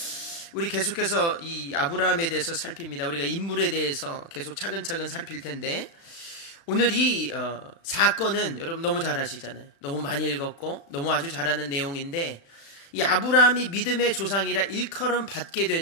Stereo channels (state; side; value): late; right; 35 ms